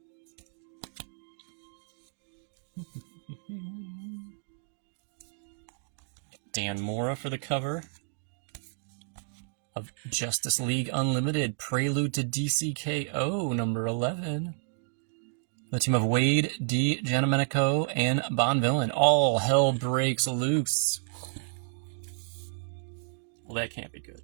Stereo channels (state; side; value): silent; left; digital silence